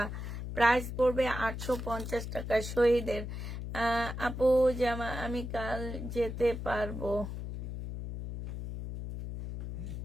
প্রাইস পড়বে 850 টাকা শহীদের। আপু জামা আমি কাল যেতে পারবো?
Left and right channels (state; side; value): noise; left; hum, 6 dB below the sound